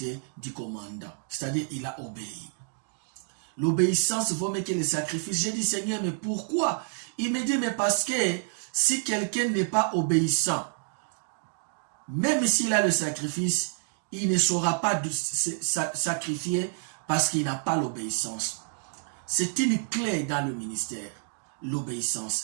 du commandant. C'est-à-dire il a obéi. L'obéissance vaut mieux que le sacrifice. J'ai dit Seigneur, mais pourquoi? Il me dit, mais parce que si quelqu'un n'est pas obéissant, même s'il a le sacrifice, il ne saura pas sacrifier parce qu'il n'a pas l'obéissance. C'est une clé dans le ministère.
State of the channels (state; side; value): silent; left; 59 dB below the other